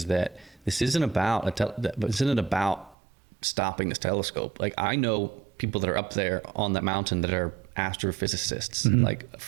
that this isn't about stopping this telescope. Like, I know people that are up there on that mountain that are astrophysicists. Like, a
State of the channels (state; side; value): drops out; left; at 3.0 s